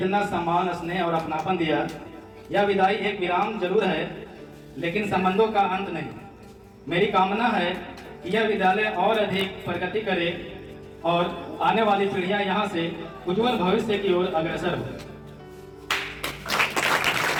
सम्मान, स्नेह और अपनापन दिया। यह विदाई एक विराम जरूर है, लेकिन संबंधों का अंत नहीं। मेरी कामना है कि यह विद्यालय और अधिक प्रगति करे और आने वाली पीढ़ियां यहाँ से उज्जवल भविष्य की ओर अग्रसर हो।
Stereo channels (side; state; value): both; identical; correlation 1.00